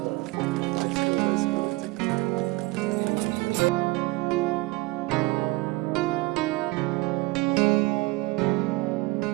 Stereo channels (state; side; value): quieter; left; 23.0 dB